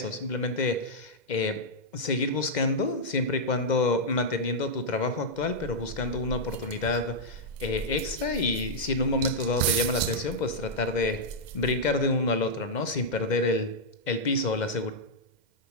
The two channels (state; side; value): late; right; 2.1 ms